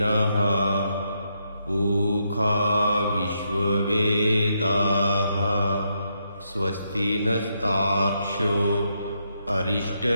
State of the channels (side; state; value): both; inverted; correlation -0.79